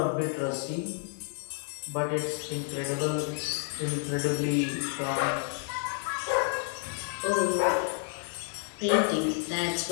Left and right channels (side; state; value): right; silent; 58 dB below the other